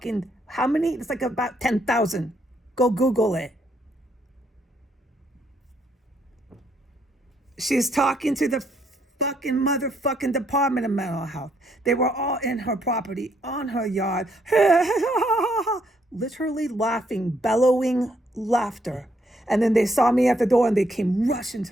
how many? It's like about 10,000. Go Google it. She's talking to the fucking motherfucking Department of Mental Health. They were all in her property, on her yard, literally laughing, bellowing laughter. And then they saw me at the door and they came rushing to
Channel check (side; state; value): both; normal; correlation 0.72